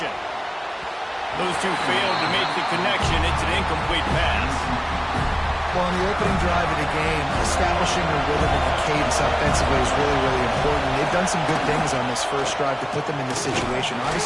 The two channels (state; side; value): identical; both; correlation 1.00